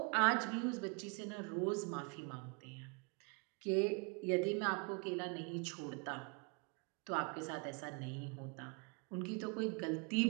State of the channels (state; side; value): quieter; left; 34.3 dB